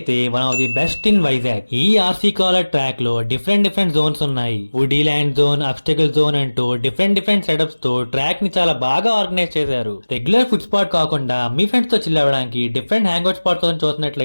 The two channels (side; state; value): both; inverted; correlation -1.00